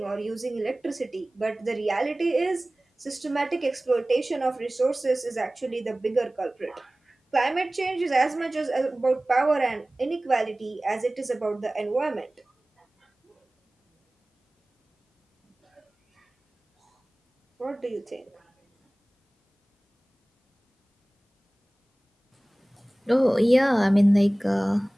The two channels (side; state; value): both; normal; correlation 0.98